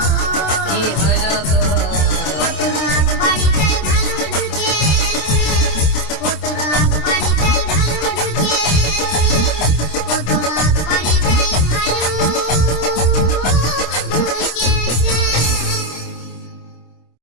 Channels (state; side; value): late; right; 26 ms